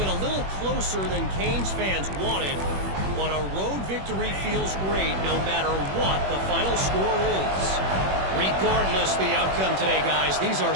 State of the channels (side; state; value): left; late; 21 ms